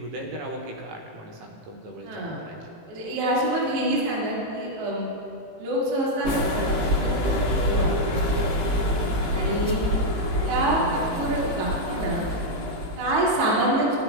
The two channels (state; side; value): late; left; 18 ms